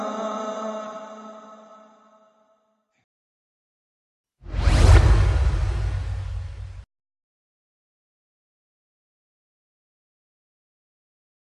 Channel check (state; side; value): identical; both; correlation 1.00